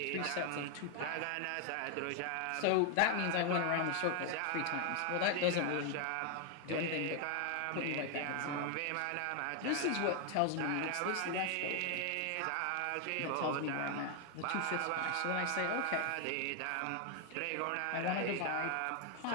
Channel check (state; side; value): different; both; correlation 0.00